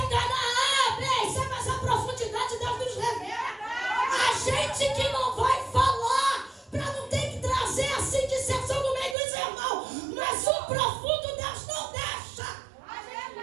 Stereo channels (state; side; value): drops out; left; at 9.2 s